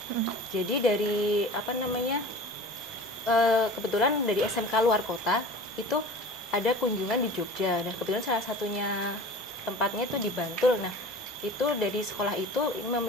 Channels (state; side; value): normal; both; correlation 0.39